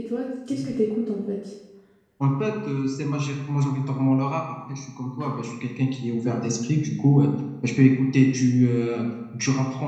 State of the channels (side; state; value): both; identical; correlation 1.00